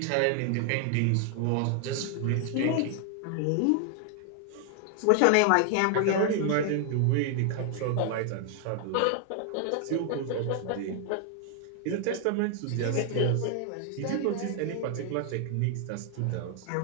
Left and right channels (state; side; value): different; both; correlation 0.00